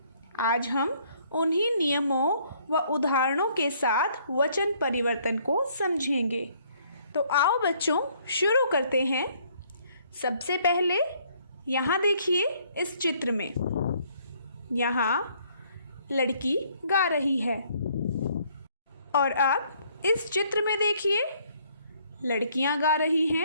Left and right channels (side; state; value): both; inverted; correlation -0.64